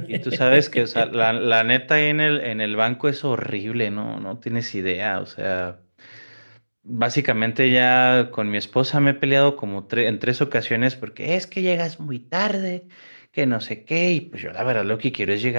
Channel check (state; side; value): inverted; both; correlation -1.00